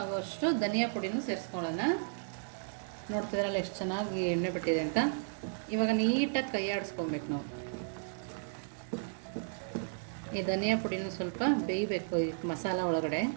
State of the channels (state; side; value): silent; left; digital silence